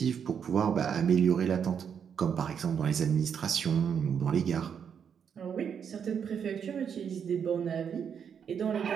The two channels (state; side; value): quieter; left; 7.5 dB